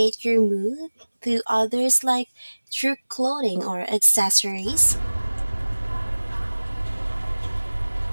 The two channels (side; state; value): both; inverted; correlation -1.00